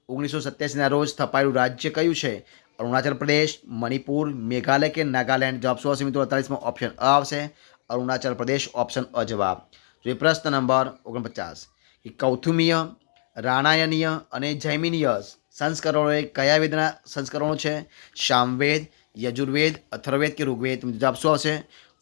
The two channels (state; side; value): silent; right; digital silence